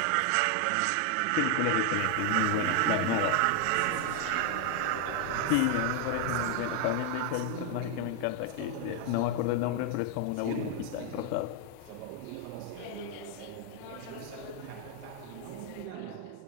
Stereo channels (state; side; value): different; both; correlation 0.00